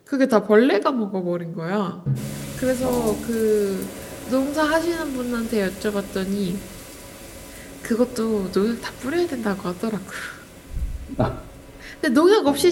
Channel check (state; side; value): identical; both; correlation 1.00